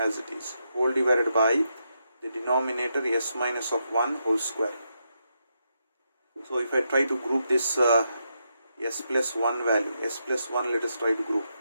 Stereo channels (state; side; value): inverted; both; correlation -0.83